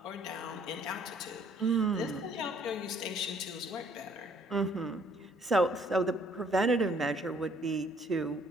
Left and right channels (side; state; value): both; normal; correlation 0.62